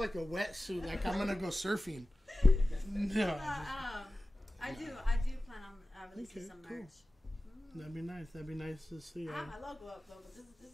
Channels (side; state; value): both; normal; correlation 0.96